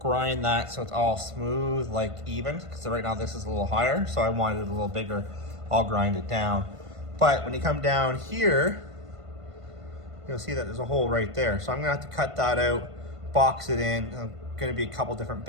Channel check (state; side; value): late; left; 1.5 ms